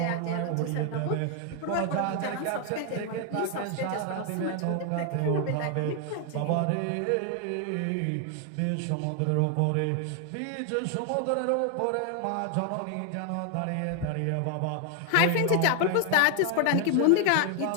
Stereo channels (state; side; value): different; both; correlation 0.00